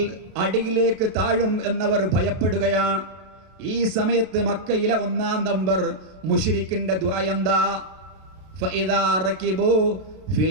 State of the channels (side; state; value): left; late; 32 ms